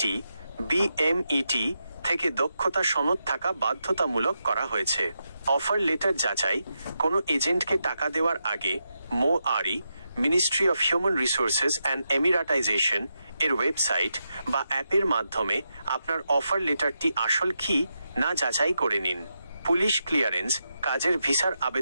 বিএমইটি থেকে দক্ষতা সনদ থাকা বাধ্যতামূলক করা হয়েছে। অফার লেটার যাচাই। কোনো এজেন্টকে টাকা দেওয়ার আগে MOARI ministry of human resources and Emiratisation এর ওয়েবসাইট বা অ্যাপের মাধ্যমে আপনার অফার লেটারটি আসল কি না যাচাই করে নিন। Police clearance. কাজের ভিসার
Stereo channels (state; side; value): inverted; both; correlation -0.86